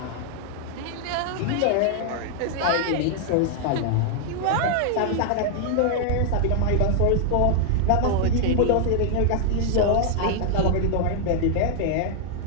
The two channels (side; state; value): both; different; correlation -0.01